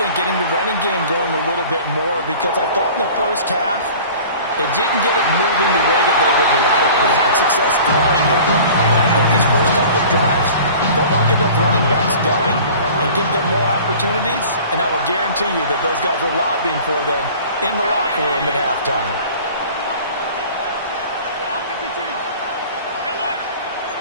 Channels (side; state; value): both; inverted; correlation -0.43